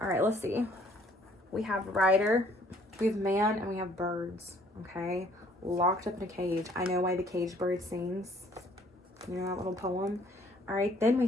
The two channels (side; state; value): both; normal; correlation 0.60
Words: All right, let's see. We have rider, we have man, and we have birds. Okay, locked up in a cage. I know why the cage bird sings. You know that little poem. All right, then we